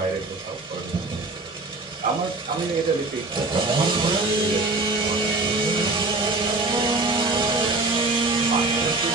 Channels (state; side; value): quieter; left; 3.3 dB